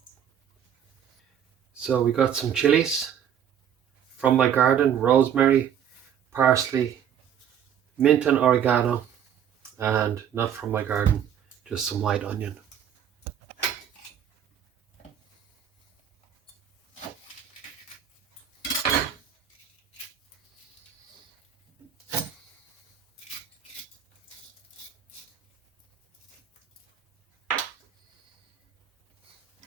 So we got some chilies from my garden, rosemary, parsley, mint and oregano, and not from my garden, just some white onion.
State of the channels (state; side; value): quieter; left; 9.0 dB